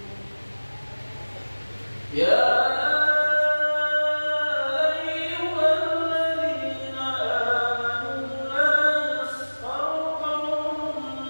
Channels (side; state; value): both; inverted; correlation -1.00